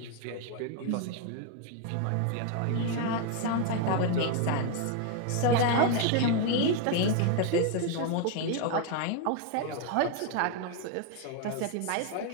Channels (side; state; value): both; different; correlation 0.01